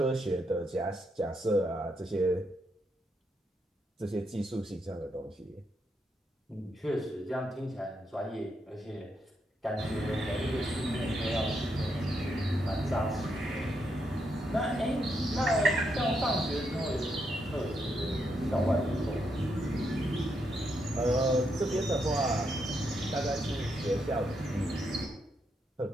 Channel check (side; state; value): both; normal; correlation 0.80